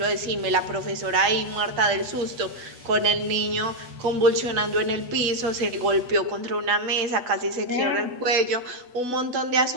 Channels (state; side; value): late; left; 8.1 ms